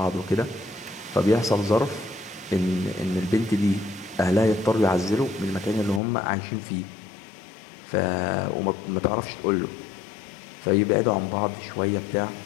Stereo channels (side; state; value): right; drops out; at 6.0 s